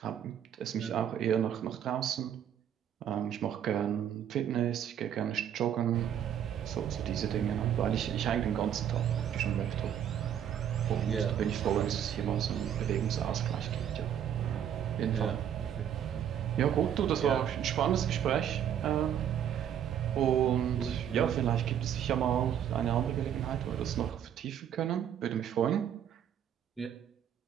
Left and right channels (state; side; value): quieter; left; 9.5 dB